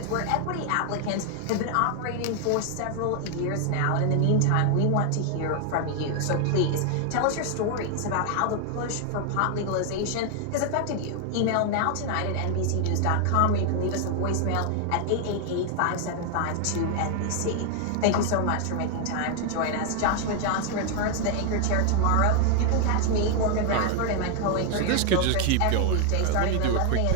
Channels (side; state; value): both; different; correlation 0.00